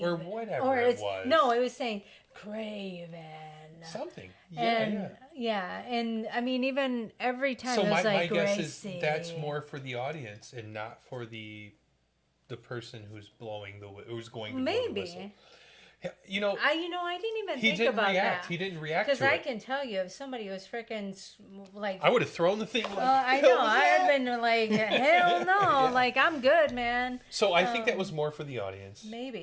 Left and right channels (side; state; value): both; identical; correlation 1.00